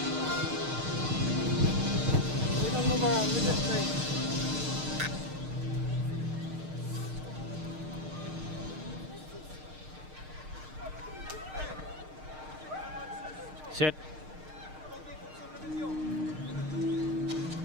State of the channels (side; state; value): left; late; 6.5 ms